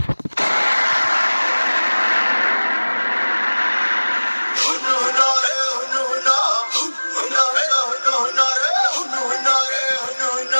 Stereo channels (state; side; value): inverted; both; correlation -1.00